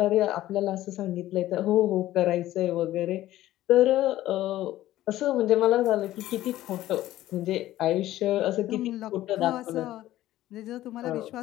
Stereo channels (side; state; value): right; quieter; 14.7 dB